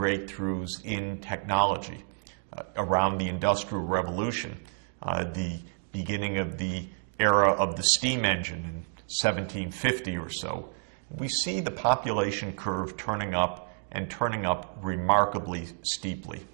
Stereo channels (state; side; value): silent; left; digital silence